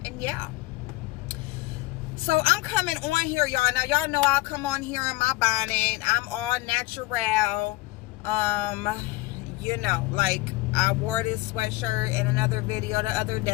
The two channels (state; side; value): quieter; right; 19.9 dB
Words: And yeah. So I'm coming on here, y'all. Now, y'all know I'll come on here in my bonnet. I'm all natural. You know, like I wore this sweatshirt in another video the other